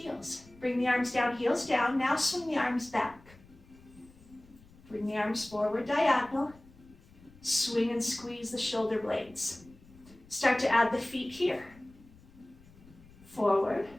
Bring the arms down, heels down. Now swing the arms back. Bring the arms forward, diagonal. Swing and squeeze the shoulder blades. Start to add the feet here. Forward,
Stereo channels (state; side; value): noise; left; rumble, 25 dB below the sound